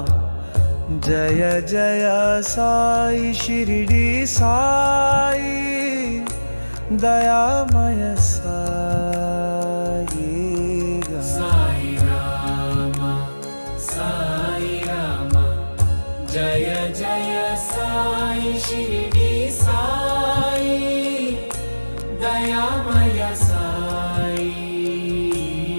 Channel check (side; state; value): both; inverted; correlation -1.00